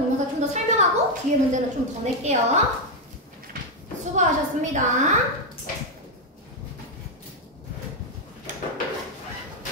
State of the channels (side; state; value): both; normal; correlation 0.04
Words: 좀 더 설명하고 뒤에 문제는 좀 더 낼게요. 수고하셨습니다.